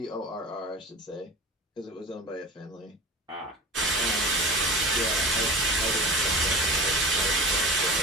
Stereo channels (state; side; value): normal; both; correlation 0.35